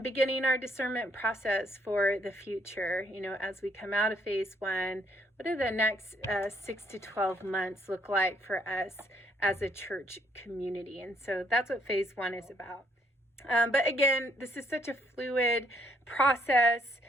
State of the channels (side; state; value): both; normal; correlation 0.69